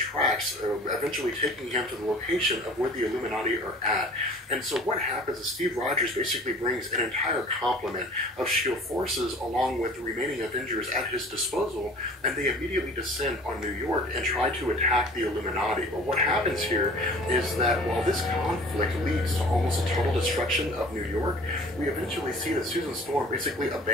eventually taking him to the location of where the Illuminati are at. And so what happens is Steve Rogers basically brings an entire complement of S.H.I.E.L.D. forces along with the remaining Avengers at his disposal, and they immediately descend on New York and try to attack the Illuminati. But what happens here is that while this conflict leads to almost a total destruction of New York, we eventually see that Susan Storm basically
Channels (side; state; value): both; normal; correlation 0.46